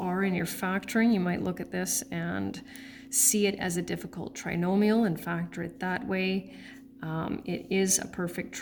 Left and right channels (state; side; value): identical; both; correlation 1.00